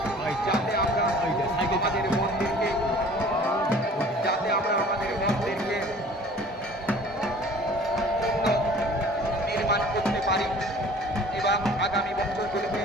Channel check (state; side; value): normal; both; correlation 0.48